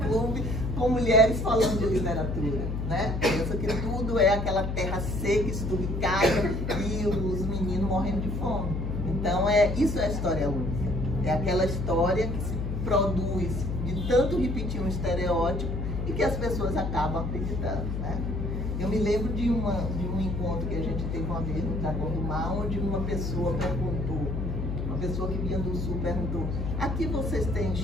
com mulheres falando de literatura, né? Pensa que tudo é aquela terra seca, esturricada e os meninos morrendo de fome. Então, isso é a história única. É aquela história que se produz de tanto repetir um estereótipo e que as pessoas acabam acreditando, né? Eu me lembro de um encontro que a gente teve uma vez no Dragão do Mar, onde uma pessoa perguntou, uma pessoa que vinha do Sul perguntou: aqui vocês têm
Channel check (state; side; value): noise; left; hum, 3 dB below the sound